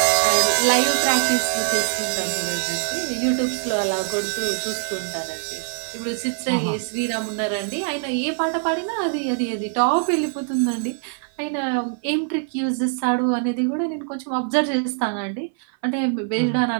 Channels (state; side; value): silent; left; 57 dB below the other